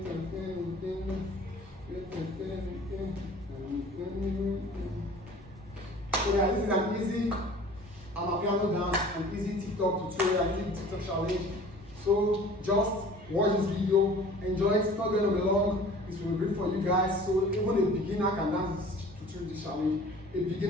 guys, this is an easy piano dance, an easy TikTok tutorial, an easy TikTok challenge. So just watch this video, enjoy it. It's not going to be long. It will be great for you guys. So even a beginner can dance this challenge. A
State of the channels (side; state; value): both; normal; correlation 0.46